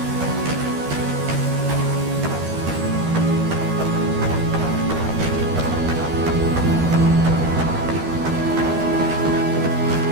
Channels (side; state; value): left; late; 13 ms